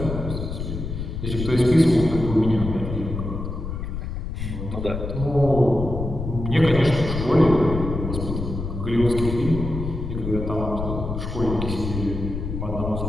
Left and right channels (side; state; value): left; noise; rumble, 5 dB below the sound